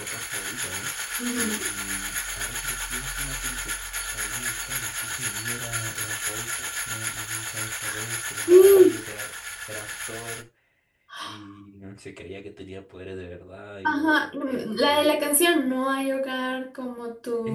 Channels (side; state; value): both; identical; correlation 1.00